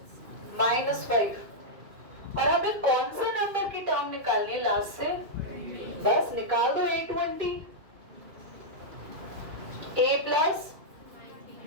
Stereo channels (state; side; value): late; left; 2.4 ms